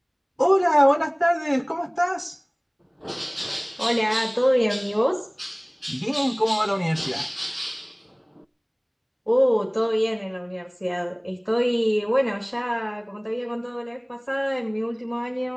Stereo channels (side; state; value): both; identical; correlation 1.00